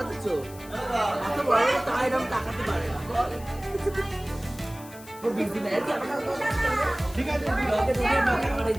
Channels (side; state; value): left; noise; hiss, 19 dB below the sound